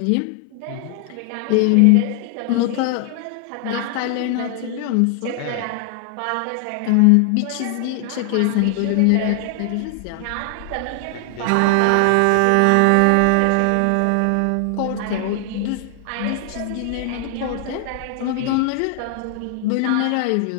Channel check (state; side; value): different; both; correlation 0.00